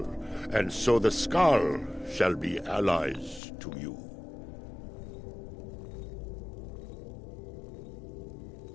and so the Skull shall be allies to you.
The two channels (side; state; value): right; drops out; at 3.4 s